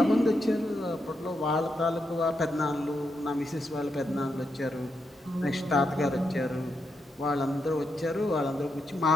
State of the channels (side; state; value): both; normal; correlation 0.83